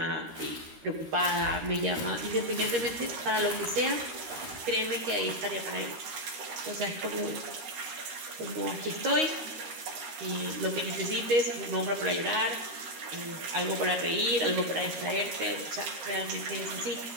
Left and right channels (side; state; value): left; late; 13 ms